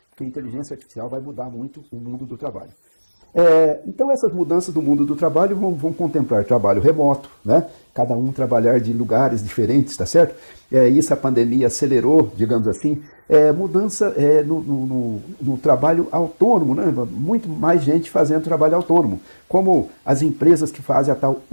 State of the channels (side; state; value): both; inverted; correlation -1.00